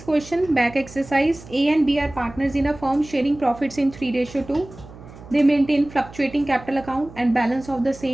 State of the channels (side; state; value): right; noise; hum, 18 dB below the sound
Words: question, back exercise. A and B are partners in a firm sharing profits in 3:2. They maintain fluctuating capital account and balance of the